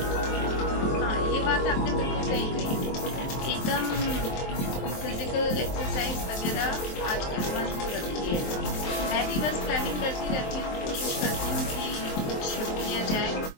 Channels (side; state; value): right; late; 23 ms